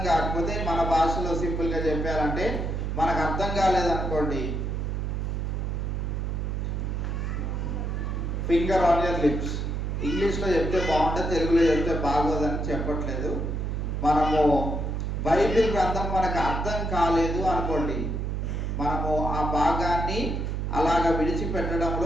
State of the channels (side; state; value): right; noise; hum, 1 dB below the sound